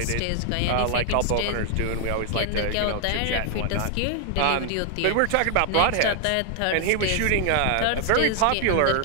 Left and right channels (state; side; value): different; both; correlation 0.00